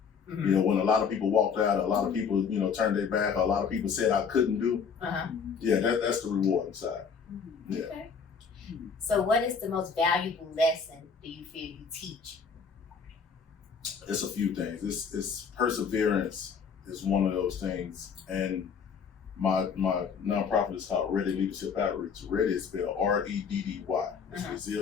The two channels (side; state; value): right; quieter; 6.2 dB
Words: You know, when a lot of people walked out, a lot of people, you know, turned their back, a lot of people said I couldn't do. Yeah, that's the rewarding side. Yeah. Okay. So what is the most valuable lesson do you feel you teach? It's a few things. It's perseverance is one of those things. And my nonprofit is called Ready Leadership Outreach. Ready is spelled REDDY. It's